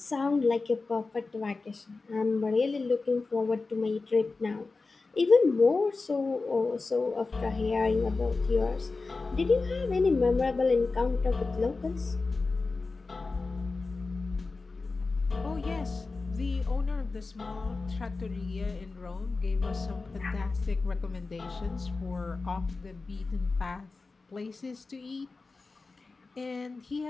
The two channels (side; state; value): right; quieter; 3.9 dB